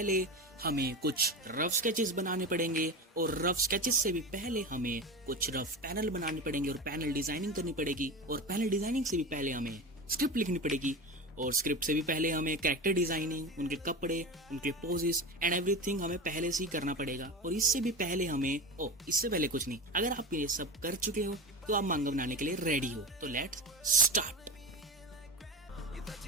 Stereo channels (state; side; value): normal; both; correlation 0.26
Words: हमें कुछ रफ स्केचेस बनाने पड़ेंगे, और रफ स्केचेस से भी पहले हमें कुछ रफ पैनल बनाने पड़ेंगे, और पैनल डिजाइनिंग करनी पड़ेगी, और पैनल डिजाइनिंग से भी पहले हमें स्क्रिप्ट लिखनी पड़ेगी, और स्क्रिप्ट से भी पहले हमें कैरेक्टर डिजाइनिंग, उनके कपड़े, उनके पोजेस एंड एवरीथिंग हमें पहले से ही करना पड़ेगा। और इससे भी पहले हमें इससे पहले कुछ नहीं, अगर आप ये सब कर चुके हो तो आप मांगा बनाने के लिए रेडी हो। तो लेट्स स्टार्ट।